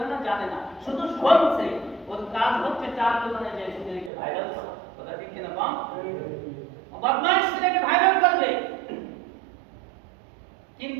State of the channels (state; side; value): drops out; left; at 4.1 s